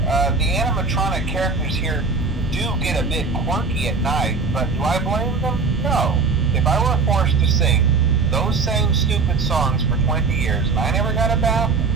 The animatronic characters here do get a bit quirky at night, but do I blame them? No. If I were forced to sing those same stupid songs for 20 years and I never got a bath,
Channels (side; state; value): left; quieter; 4.4 dB